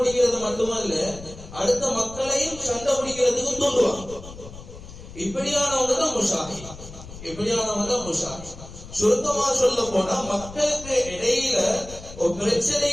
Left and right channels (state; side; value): noise; left; rumble, 15 dB below the sound